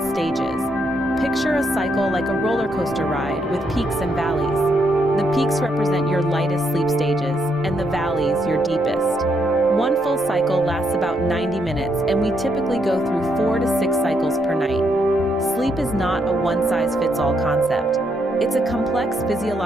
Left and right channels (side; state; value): both; normal; correlation 0.76